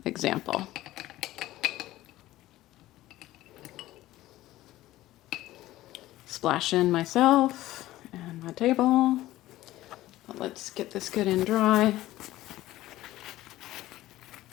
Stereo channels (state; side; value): quieter; right; 15.9 dB